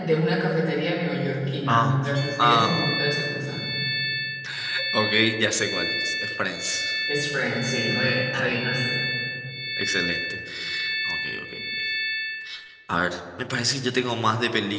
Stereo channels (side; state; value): both; identical; correlation 1.00